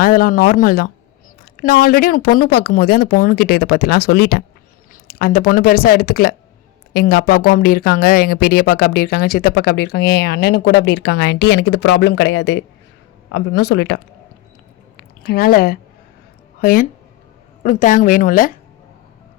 இதெல்லாம் நார்மல் தான். நான் ஆல்ரெடி உனக்கு பொண்ணு பார்க்கும்போதே அந்த பொண்ணுக்கிட்ட இதை பற்றிலாம் சொல்லிட்டேன். அந்த பொண்ணு பெருசாக எடுத்துக்கல. எங்கள் அப்பாவுக்கும் அப்படி இருக்காங்க, எங்கள் பெரியப்பாக்கு அப்படி இருக்காங்க, சித்தப்பாக்கு அப்படி இருக்காங்க, என் அண்ணனுக்கு கூட அப்படி இருக்காங்க ஆண்டி, எனக்கு இது ப்ராப்ளம் கிடையாது அப்படின்னு சொல்லிட்டான். அதனால் ஹயன் உனக்கு தேங்க வேணும்ல?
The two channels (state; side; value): quieter; right; 17.5 dB